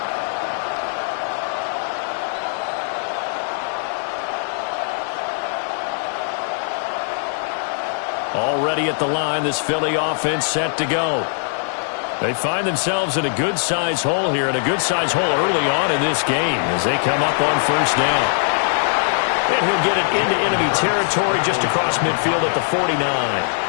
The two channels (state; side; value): silent; right; digital silence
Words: Already at the line, this Philly offense set to go. They find themselves in a good-sized hole here, and a good-sized hole early on in this game as they come up on first down. And he'll get it into enemy territory just across midfield at the 49.